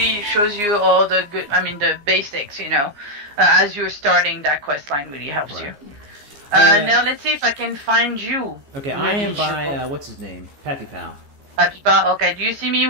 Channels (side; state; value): left; late; 14 ms